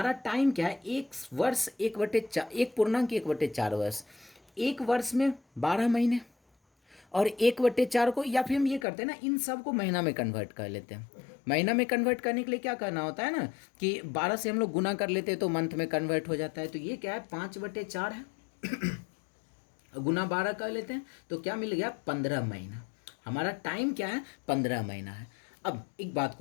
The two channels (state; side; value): drops out; right; at 8.8 s